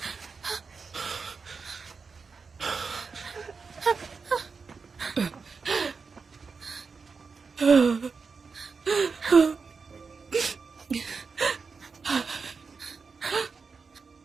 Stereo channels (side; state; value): left; quieter; 5.0 dB